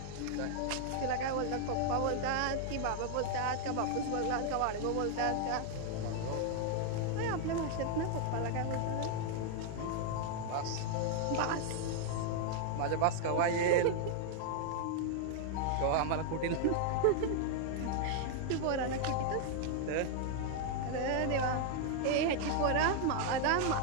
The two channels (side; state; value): both; different; correlation 0.00